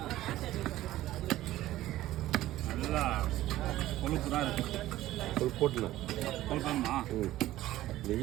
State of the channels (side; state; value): left; quieter; 15.1 dB